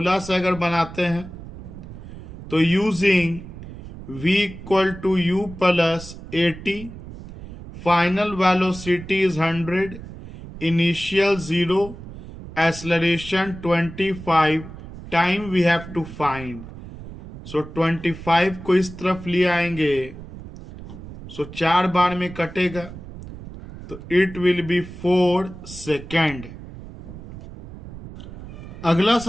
से अगर बनाते हैं, तो using v equal to u plus 80, final velocity is 100, initial 0, acceleration 25, time we have to find. So 25 को इस तरफ ले आएंगे, सो 4 बार में कटेगा, तो इट विल बी 4 सेकेंड। अगला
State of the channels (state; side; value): noise; right; rumble, 14 dB below the sound